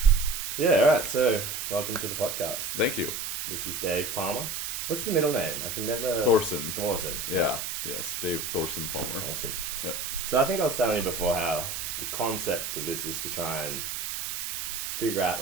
Yeah, all right. So, welcome to the podcast. Thank you. This is Dave Palmer. What's the middle name? I can never. Thourson. Thourson. Yeah. Yes, Dave Thourson Palmer. Awesome. Yeah. So I think I was telling you before how the concept of this is to try and figure out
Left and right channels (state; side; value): noise; right; hiss, 4 dB below the sound